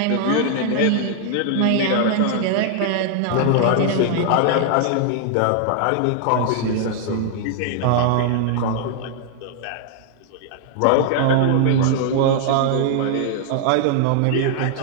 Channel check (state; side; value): different; both; correlation 0.00